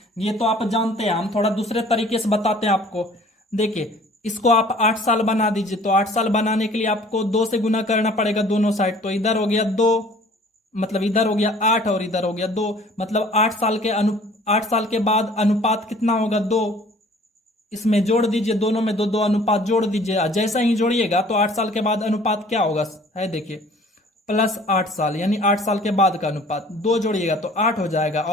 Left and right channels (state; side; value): normal; both; correlation 0.52